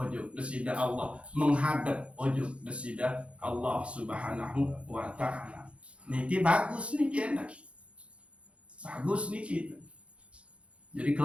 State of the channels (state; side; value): late; left; 0.061 ms